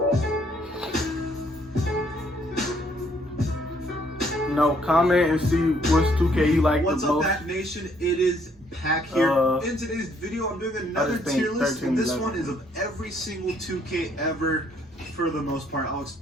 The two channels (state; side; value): normal; both; correlation 0.67